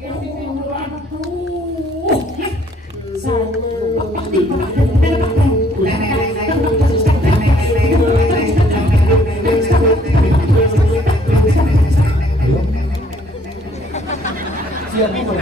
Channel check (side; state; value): both; normal; correlation 0.62